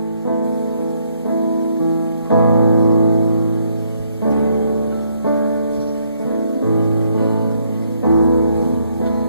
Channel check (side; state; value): both; inverted; correlation -0.71